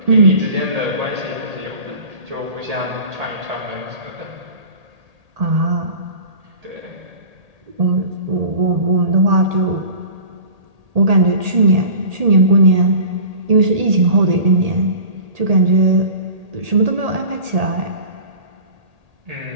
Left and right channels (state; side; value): late; left; 1.8 ms